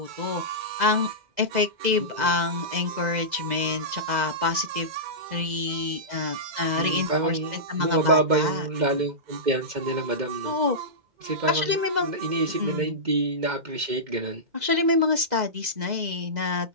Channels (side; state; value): left; late; 2.0 ms